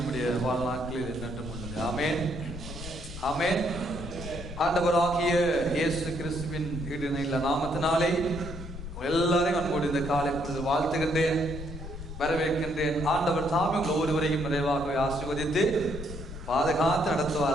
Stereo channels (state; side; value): noise; left; rumble, 10 dB below the sound